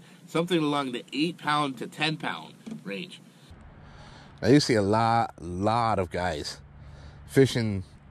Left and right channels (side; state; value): both; identical; correlation 1.00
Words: something along the 8-pound to 10-pound range. I used to see a lot of guys fishing